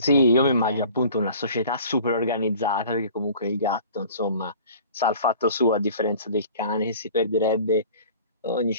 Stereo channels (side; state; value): both; inverted; correlation -0.46